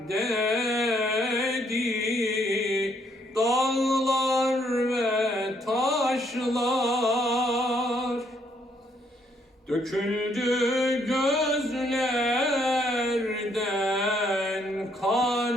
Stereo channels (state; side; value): normal; both; correlation 0.70